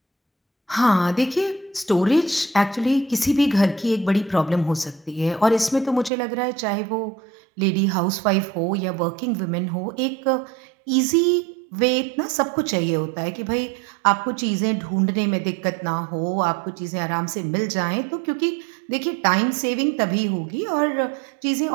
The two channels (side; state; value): left; drops out; at 6.1 s